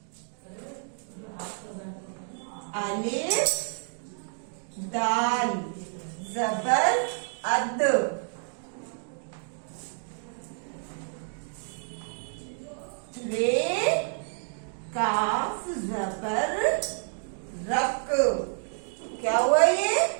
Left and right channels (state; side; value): silent; left; 58 dB below the other